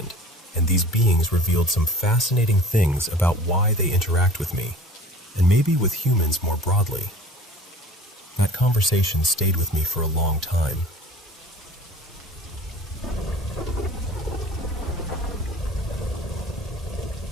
and these beings revealed some fascinating things about why they interact with me, and maybe with humans more broadly. That conversation stayed with me for a long time.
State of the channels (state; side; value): normal; both; correlation 0.43